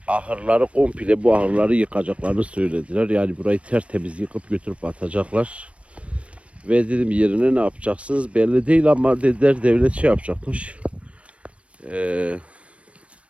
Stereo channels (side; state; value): left; late; 0.062 ms